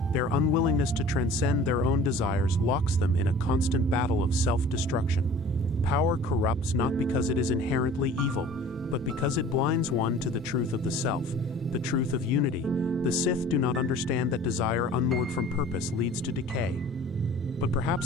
Their unwillingness to transcend their own desires locks them in a constant battle of self-destruction. Power corrupts not because it is inherently evil, but because it blinds one to the truth of the self. the truth of unity. The Sith do not understand that desire unmoored from purpose leads to decay. But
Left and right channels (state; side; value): normal; both; correlation 0.46